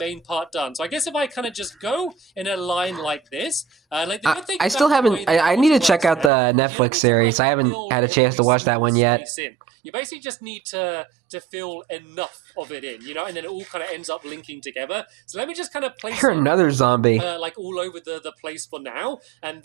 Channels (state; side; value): drops out; left; at 6.3 s